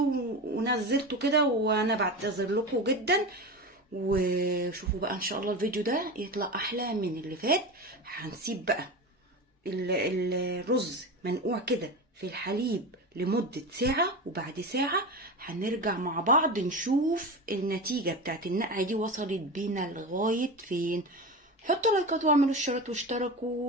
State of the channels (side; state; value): both; normal; correlation 0.25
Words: ونزلته كده، وانا بعتذر لكم جدا. وشوفوا بقى ان شاء الله الفيديو ده يطلع احلى من اللي فات. هنسيب بقى الرز منقوع كده في الحليب لمدة ساعة، وبعد ساعة هنرجع مع بعض نشوف النتيجة بتاعت النقعة دي وصلت بينا لغاية فين. حطوا لايكات واعملوا اشتراك